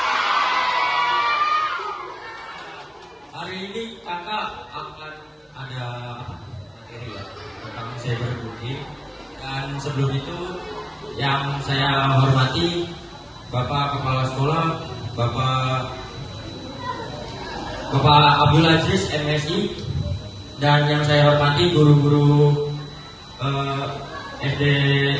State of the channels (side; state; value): both; identical; correlation 1.00